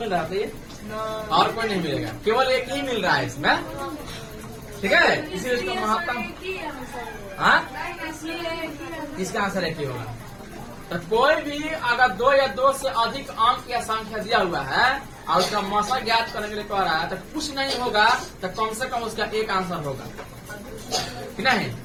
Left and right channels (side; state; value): both; identical; correlation 1.00